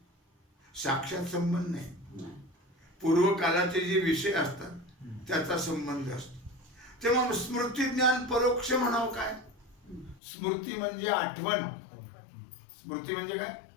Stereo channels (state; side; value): drops out; right; at 10.2 s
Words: साक्षात संबंध नाही, पूर्वकालाचे जे विषय असतात त्याचा संबंध असतो. तेव्हा स्मृती ज्ञान परोक्ष म्हणावं काय? स्मृती म्हणजे आठवण. स्मृती म्हणजे काय?